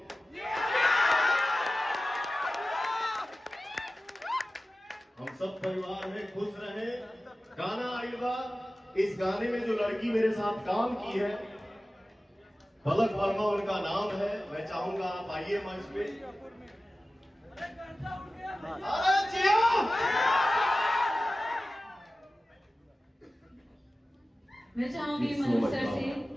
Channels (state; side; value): normal; both; correlation 0.96